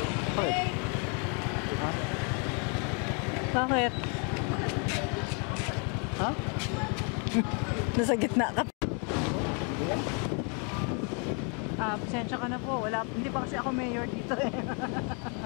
Bakit? Ha? Bakit? Ha? Nasa gitna ka. Pasensya ka na po. Hindi pa kasi ako mayor dito eh.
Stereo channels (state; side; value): quieter; right; 36.7 dB